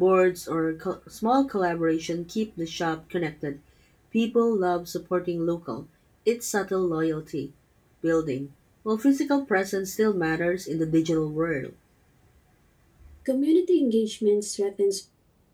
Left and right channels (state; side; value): identical; both; correlation 1.00